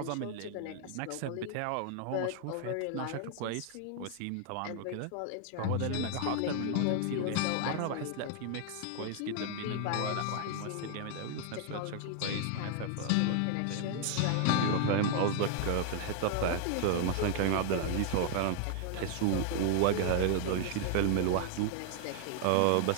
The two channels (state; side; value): different; both; correlation 0.00